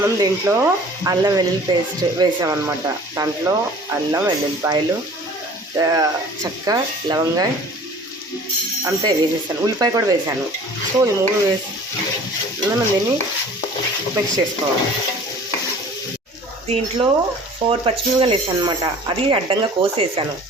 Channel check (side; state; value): both; normal; correlation 0.47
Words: దీంట్లో అల్లం వెల్లుల్లి పేస్ట్ వేసామన్నమాట. దాంట్లో అల్లం వెల్లుల్లిపాయలు, చెక్క, లవంగాయ అంతే వేసేసాను. ఉల్లిపాయ కూడా వేసాను. సో ఈ మూడు వేసి మనం దీన్ని మిక్స్ చేసుకోవాలి. దీంట్లో 4 పచ్చిమిరపకాయలు వేసాను అనమాట. అది అడ్డంగా కోసేసాను.